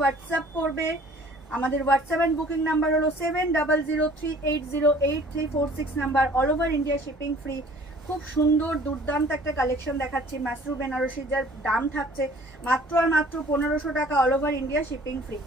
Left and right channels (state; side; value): normal; both; correlation 0.52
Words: করবে। আমাদের হোয়াটসঅ্যাপ অ্যান্ড বুকিং নাম্বার হলো 7003808346 number. All over India shipping free. খুব সুন্দর দুর্দান্ত একটা কালেকশন দেখাচ্ছি মাসরু বেনারসির, যার দাম থাকছে মাত্র আর মাত্র 1500 টাকা, all over India shipping free.